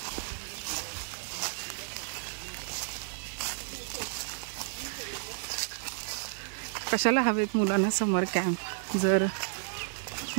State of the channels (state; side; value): silent; left; 56 dB below the other